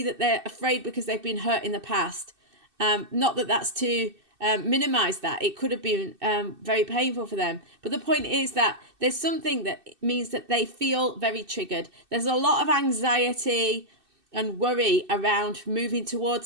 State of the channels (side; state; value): left; late; 2.6 ms